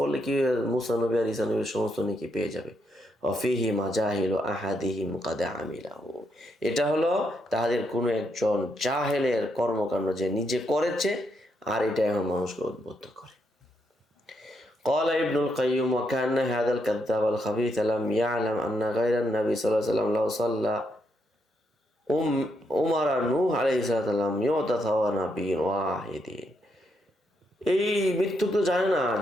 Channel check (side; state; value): both; normal; correlation 0.78